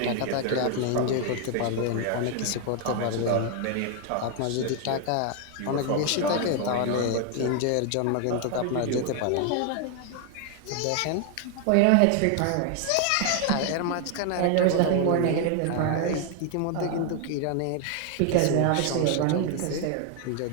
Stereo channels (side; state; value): both; different; correlation 0.00